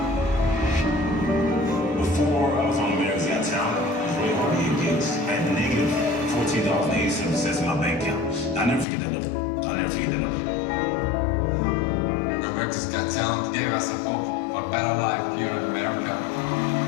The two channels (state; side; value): drops out; right; at 8.8 s